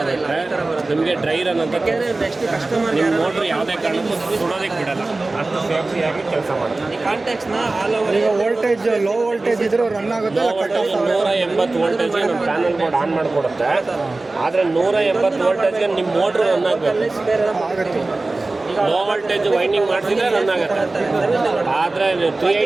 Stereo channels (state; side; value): quieter; left; 3.2 dB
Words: ನಿಮಗೆ ಡ್ರೈ ರನ್ ಅಂತ ನಿಮ್ಮ ಮೋಟ್ರ್ ಯಾವುದೇ ಕಾರಣಕ್ಕೂ ಸುಡೋದಕ್ಕೆ ಬಿಡಲ್ಲ, ಅಷ್ಟು ಸೇಫ್ಟಿಯಾಗಿ ಕೆಲಸ ಮಾಡುತ್ತೆ. ಈಗ ವೋಲ್ಟೇಜ್ ಲೋ ವೋಲ್ಟೇಜ್ ಇದ್ರೂ ರನ್ ಆಗುತ್ತೆ. 180 ವೋಲ್ಟೇಜ್ಗೆ ನಮ್ಮ ಪ್ಯಾನಲ್ ಬೋರ್ಡ್ ಆನ್ ಮಾಡಿಕೊಡುತ್ತೆ. ಆದರೆ 180 ವೋಲ್ಟೇಜ್ಗೆ ನಿಮ್ಮ ಮೋಟ್ರ್ ರನ್ ಆಗಬೇಕು. ಲೋ ವೋಲ್ಟೇಜ್ ವೈಂಡಿಂಗ್ ಮಾಡಿಸಿದ್ರೆ ರನ್ ಆಗುತ್ತೆ. ಆದರೆ